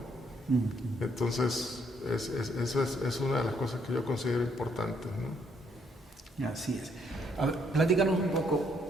Entonces, eso es una de las cosas que yo considero importantes, ¿no? Así es. A ver, platícanos un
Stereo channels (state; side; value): normal; both; correlation 0.70